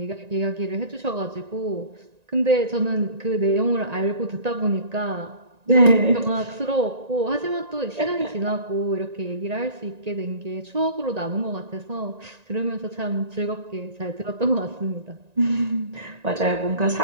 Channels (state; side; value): late; left; 1.9 ms